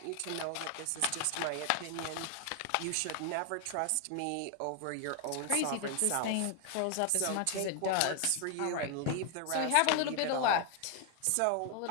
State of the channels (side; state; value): both; different; correlation 0.00